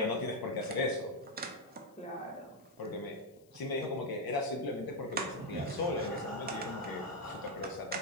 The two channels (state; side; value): noise; left; hiss, 30 dB below the sound